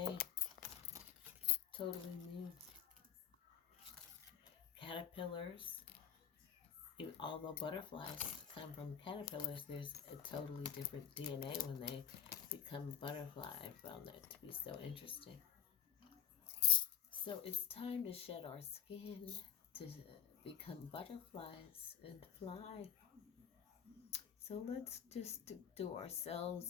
totally new caterpillars. Although butterflies come from caterpillars, there's a totally different DNA when they become butterfly. I found that to be so interesting. So it's time to shed our skin to become butterflies and fly. So let's just do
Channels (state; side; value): quieter; right; 9.8 dB